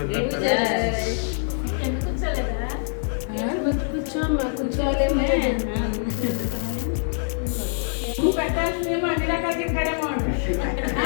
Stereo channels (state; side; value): silent; right; digital silence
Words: కూర్చోమ్మా కూర్చోలేమే పెట్టాల్సిందేమో అన్ని రకాలు తింటాడేమో